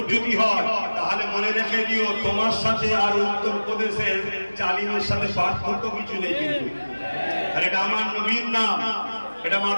হয়, তাহলে মনে রেখে দিও তোমার সাথে আর উত্তরপ্রদেশের জালিমের সাথে পার্থক্য কিছু নেই। কিন্তু আর এটা আমার নবীর নাম, এটা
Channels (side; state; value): both; inverted; correlation -1.00